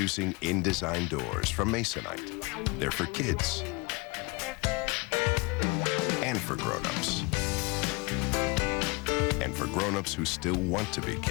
InDesign doors from Masonite. They're for kids. And for grown-ups. And for grown-ups who still want to be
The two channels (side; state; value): right; quieter; 27.4 dB